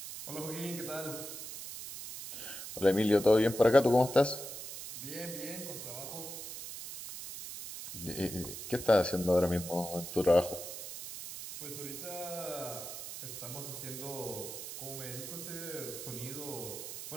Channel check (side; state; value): right; noise; hiss, 9 dB below the sound